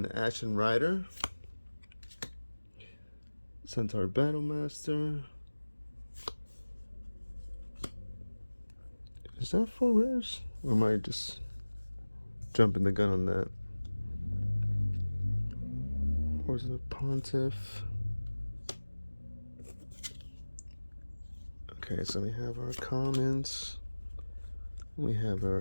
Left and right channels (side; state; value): both; inverted; correlation -1.00